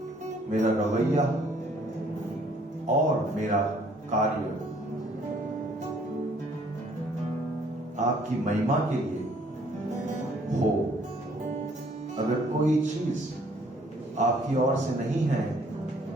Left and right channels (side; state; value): both; normal; correlation 0.62